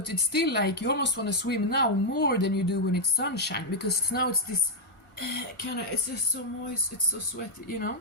it's still like you almost want to swim now more than you do when it's sunshine, because now it's this it's just so moist, it's so sweaty, you know.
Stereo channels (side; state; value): right; late; 1.4 ms